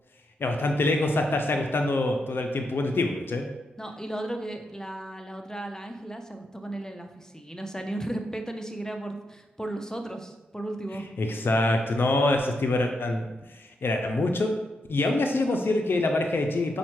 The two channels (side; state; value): both; normal; correlation 0.82